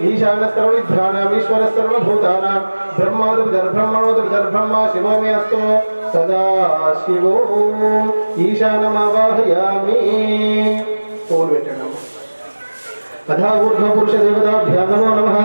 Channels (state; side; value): inverted; both; correlation -1.00